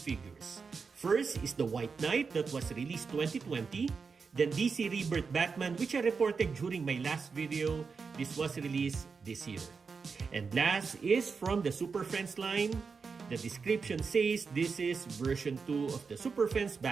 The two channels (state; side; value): quieter; left; 5.2 dB